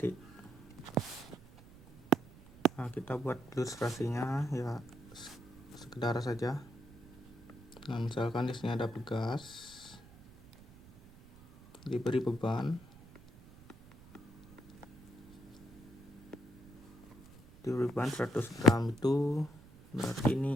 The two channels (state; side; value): noise; right; rumble, 21 dB below the sound